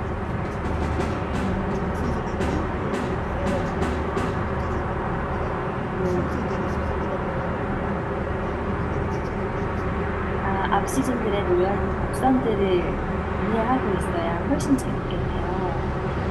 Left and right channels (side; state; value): both; identical; correlation 1.00